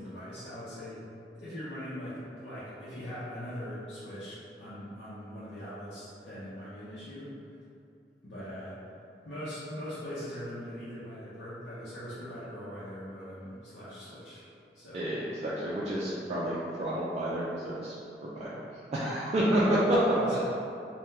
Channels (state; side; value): normal; both; correlation 0.59